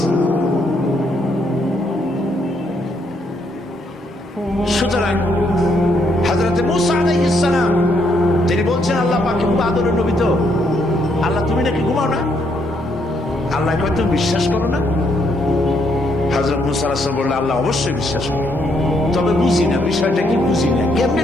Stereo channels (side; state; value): both; normal; correlation 0.73